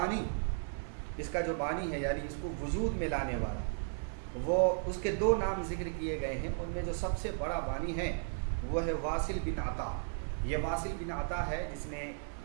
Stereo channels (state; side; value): silent; left; digital silence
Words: اس کا جو بانی ہے یعنی اس کو وجود میں لانے والا، وہ اس کے دو نام ذکر کیے گئے ہیں، ان میں جو سب سے بڑا بانی ہے وہ ہے واصل بن عطا۔ یہ واصل بن عطا ہے جس نے